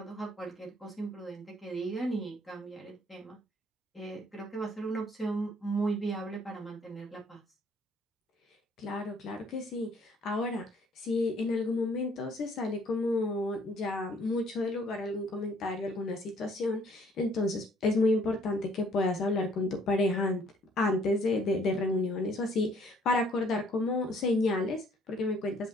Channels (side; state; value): both; normal; correlation 0.61